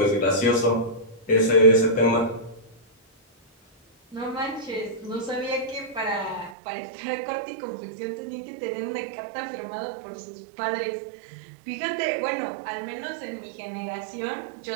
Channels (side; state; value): left; drops out; at 6.6 s